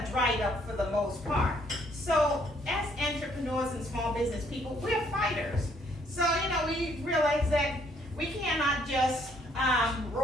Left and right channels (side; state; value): both; normal; correlation 0.66